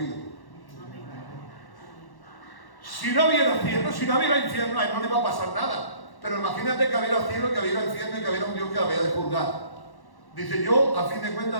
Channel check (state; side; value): late; right; 1.1 ms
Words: Si no hubiera cielo, si no hubiera infierno, a él no le va a pasar nada. Pero imagínate que hubiera cielo, que hubiera infierno y que hubiera un Dios que la había de juzgar. Dice: yo a fin de cuentas